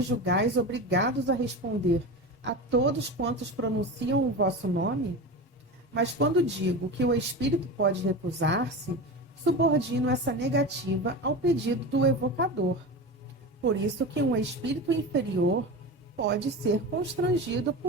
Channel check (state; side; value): normal; both; correlation 0.26